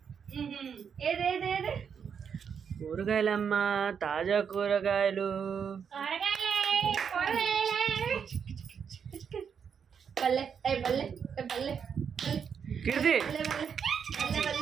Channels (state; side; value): quieter; left; 7.1 dB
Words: ఏదేదేదే కూరగాయలమ్మా, తాజా కూరగాయలు. బల్లె బల్లె బల్లె కీర్తి